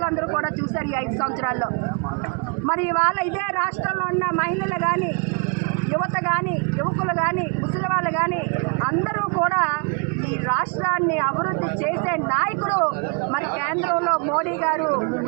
కూడా చూశారు ఈ 5 సంవత్సరాల్లో. మరి ఇవాళ ఇదే రాష్ట్రంలో ఉన్న మహిళలు కానీ, యువత కానీ, యువకులు కానీ, ముసలి వాళ్ళు కానీ అందరూ కూడా ఈ రాష్ట్రాన్ని అభివృద్ధి చేసే నాయకుడు మరి కేంద్రంలో మోడీ గారు,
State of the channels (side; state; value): left; quieter; 35.7 dB